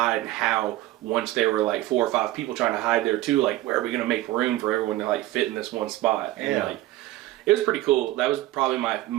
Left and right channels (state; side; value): quieter; left; 16.3 dB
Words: and how, once there were like 4 or 5 people trying to hide there too, like, where are we going to make room for everyone to like fit in this one spot? And like, it was pretty cool. That was probably my